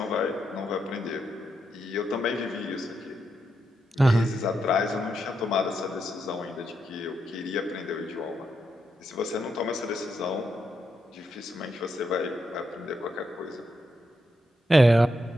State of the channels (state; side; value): normal; both; correlation 0.82